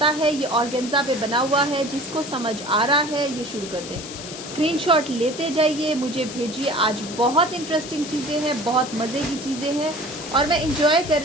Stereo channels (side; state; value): left; noise; hiss, 11 dB below the sound